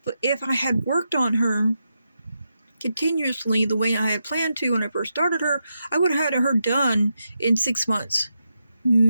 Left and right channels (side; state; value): both; inverted; correlation -0.86